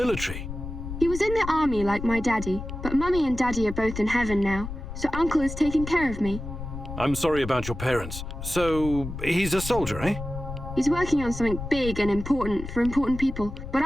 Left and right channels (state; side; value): noise; left; rumble, 8 dB below the sound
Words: He was in the army like my daddy, but Mummy and Daddy are both in heaven now, so Uncle is taking care of me. I'm sorry about your parents. So, he's a soldier, eh? He's working on something big and important for important people, but